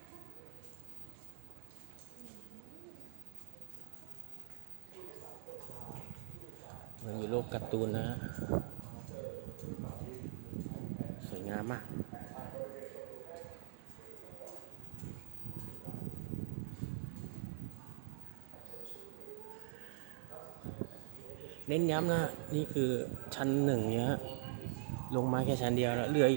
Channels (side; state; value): left; silent; digital silence